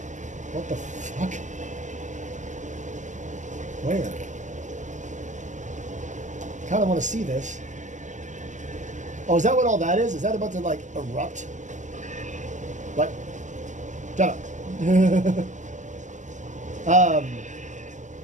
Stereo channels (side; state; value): left; late; 0.35 ms